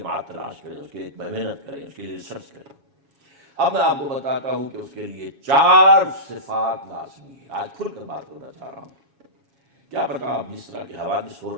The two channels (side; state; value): left; late; 7.3 ms